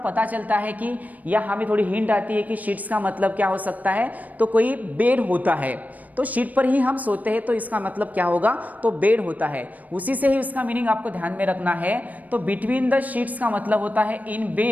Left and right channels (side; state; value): left; late; 0.077 ms